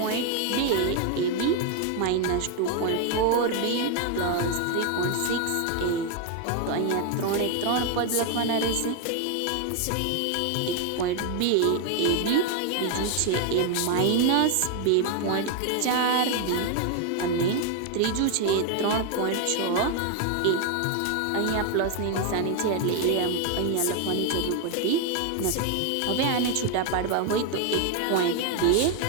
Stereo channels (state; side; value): different; both; correlation 0.01